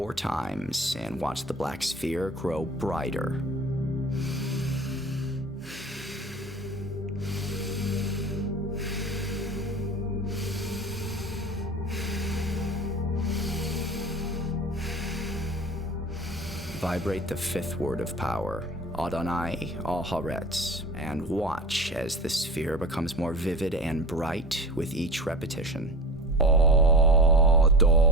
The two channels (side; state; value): both; normal; correlation 0.34